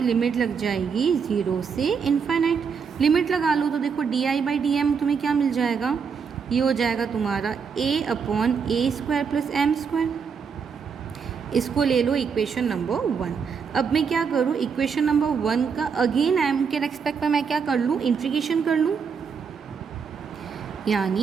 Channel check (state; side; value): quieter; left; 6.1 dB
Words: लिमिट लग जाएगी 0 से इनफाइनाइट। लिमिट लगा लो तो देखो di/dm तुम्हें क्या मिल जाएगा, ये हो जाएगा तुम्हारा a/a² + m²। इसको ले लो इक्वेशन नंबर 1। अब मैं क्या करूँ, इक्वेशन नंबर 1 का अगेन m के रेस्पेक्ट में मैं क्या कर लूँ, इंटीग्रेशन कर लूँ,